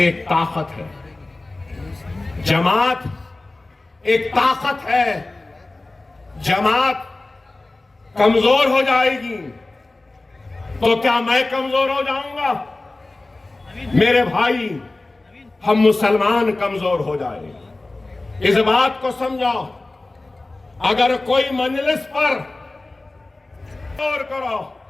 एक ताकत है, जमात एक ताकत है। जमात कमजोर हो जाएगी तो क्या मैं कमजोर हो जाऊंगा? मेरे भाई, हम मुसलमान कमजोर हो जाएंगे। इस बात को समझो। अगर कोई मजलिस पर गौर करो,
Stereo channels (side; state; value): right; quieter; 3.0 dB